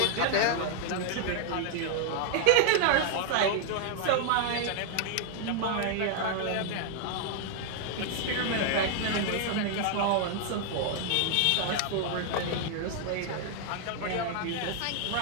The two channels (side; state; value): both; different; correlation 0.00